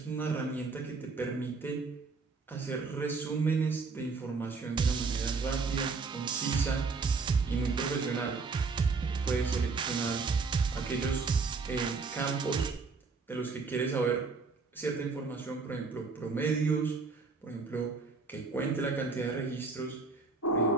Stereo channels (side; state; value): left; quieter; 4.4 dB